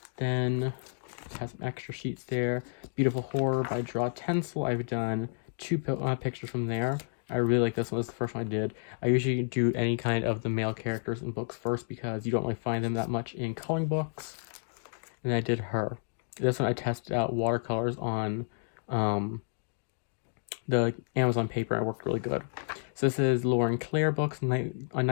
Then it has some extra sheets there. Beautiful Horror by Draw Tencil. I've done 2 pictures from there. I really like this one. This is the first one I did. I usually do any kind of the male characters in books first because you don't really find them that much in coloring books. And I did her. This one I tested out watercolors on the Amazon paper. It worked really good. So this is Lauren Claire books,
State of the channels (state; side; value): silent; right; digital silence